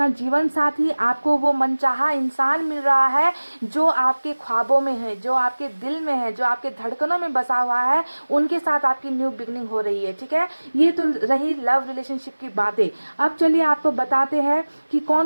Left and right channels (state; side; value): inverted; both; correlation -1.00